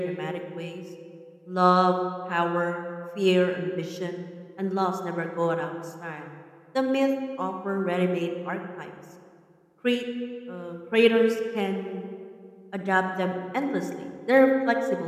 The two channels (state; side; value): identical; both; correlation 1.00